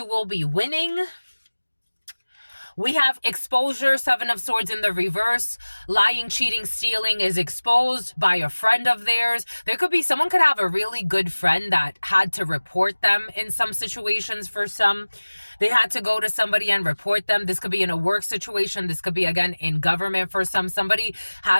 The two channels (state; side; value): inverted; both; correlation -1.00